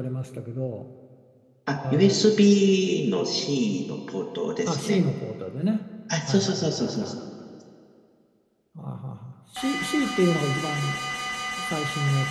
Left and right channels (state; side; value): identical; both; correlation 1.00